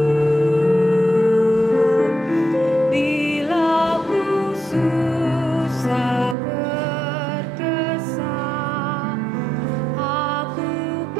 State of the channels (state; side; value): drops out; left; at 6.4 s